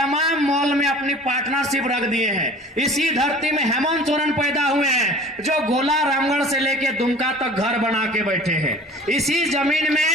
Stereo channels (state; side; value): normal; both; correlation 0.44